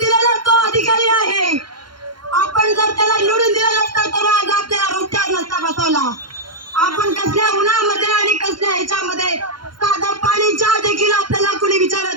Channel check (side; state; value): left; late; 0.72 ms